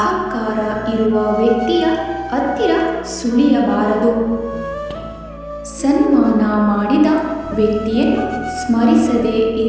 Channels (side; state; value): both; identical; correlation 1.00